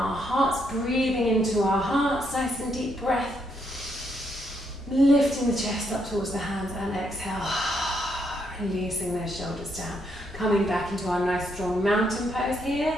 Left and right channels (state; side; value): normal; both; correlation 0.76